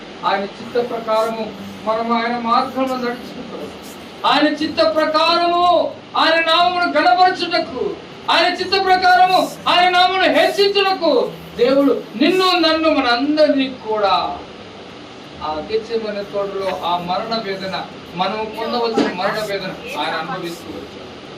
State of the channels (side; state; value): both; identical; correlation 1.00